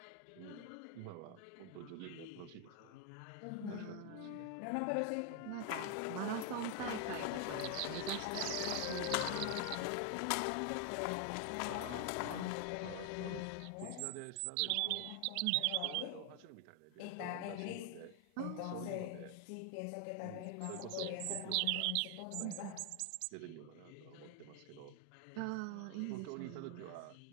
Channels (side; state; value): both; different; correlation 0.00